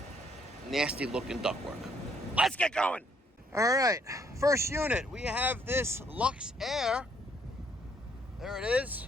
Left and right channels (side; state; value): both; normal; correlation 0.68